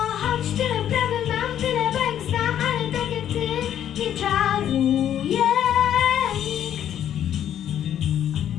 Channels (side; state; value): right; quieter; 10.4 dB